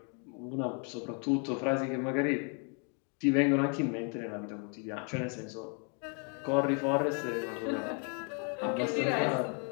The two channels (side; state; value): right; quieter; 38.8 dB